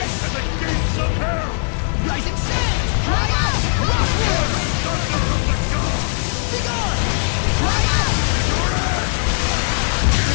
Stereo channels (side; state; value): right; silent; digital silence